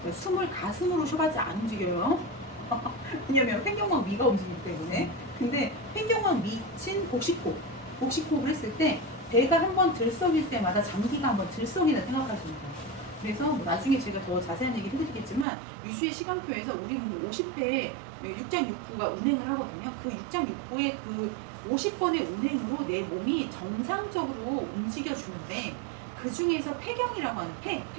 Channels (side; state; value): left; drops out; at 15.5 s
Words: 숨을 가슴으로 쉬어가지 안 움직여요. 왜냐면 횡격막 위가 움직이기 때문에. 근데 횡격막 밑인 복식호흡을 했을 때 배가 한번 들썩일 때마다 장기가 한번 들썩이다 생각하시면 돼요. 그래서 뭐 나중에 제가 더 자세한 얘기를 해드리겠지만 유슈의 시간표에서 우리 몸이 50회에 6.6부가 운행을 하거든요. 그 6.6부의 그 50번의 운행으로 내 몸이 정상적으로 움직여주는데 그 중에서 폐경이라고 하는